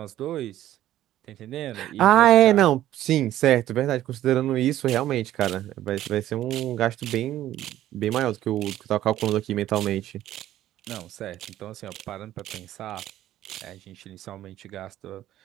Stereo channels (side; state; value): left; quieter; 13.3 dB